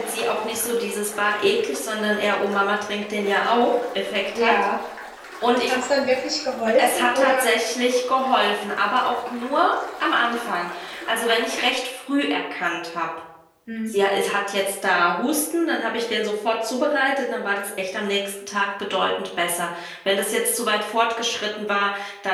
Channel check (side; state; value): both; identical; correlation 1.00